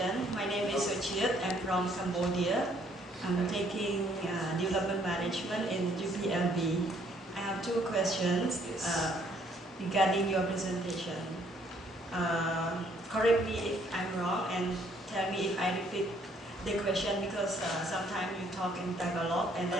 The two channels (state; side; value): normal; both; correlation 0.65